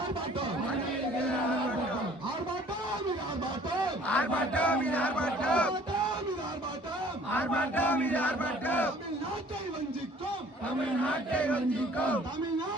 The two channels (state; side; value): normal; both; correlation 0.54